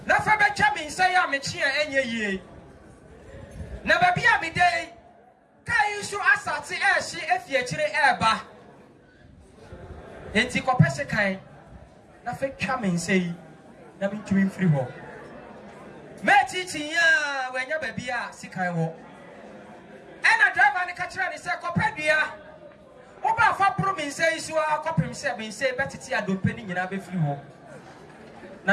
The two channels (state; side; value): identical; both; correlation 1.00